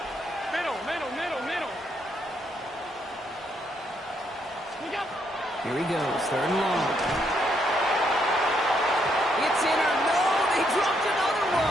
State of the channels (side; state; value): both; normal; correlation 0.75